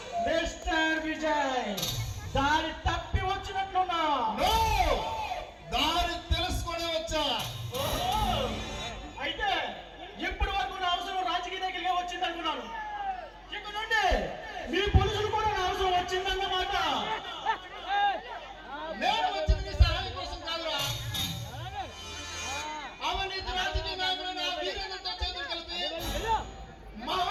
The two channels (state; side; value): identical; both; correlation 1.00